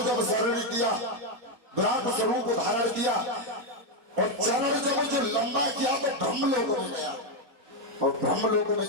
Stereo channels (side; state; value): left; late; 4.4 ms